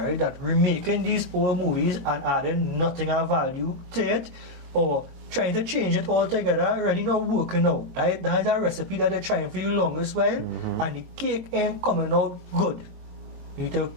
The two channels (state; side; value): late; left; 22 ms